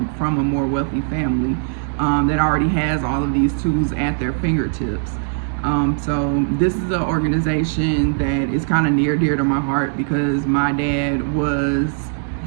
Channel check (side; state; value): left; silent; digital silence